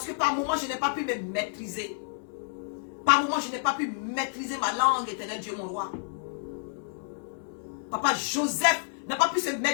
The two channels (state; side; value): silent; right; digital silence